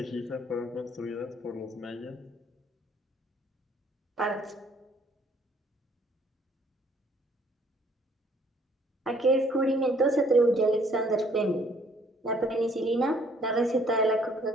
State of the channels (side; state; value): both; normal; correlation 0.61